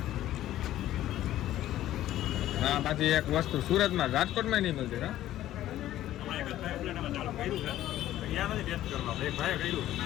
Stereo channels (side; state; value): right; quieter; 13.5 dB